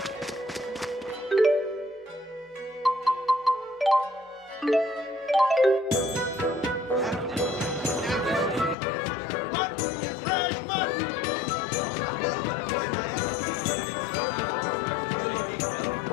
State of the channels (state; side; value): drops out; right; at 8.8 s